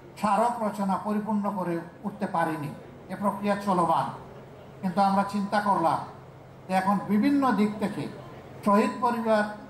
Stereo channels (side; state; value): both; identical; correlation 1.00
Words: স্মারক রচনা পরিপূর্ণ করে উঠতে পারিনি, এ প্রক্রিয়া চলমান। কিন্তু আমরা চিন্তা করলাম যে এখন বিভিন্ন দিক থেকে শহীদ পরিবার,